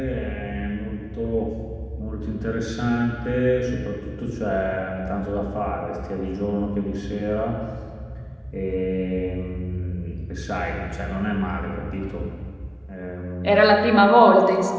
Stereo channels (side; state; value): both; identical; correlation 1.00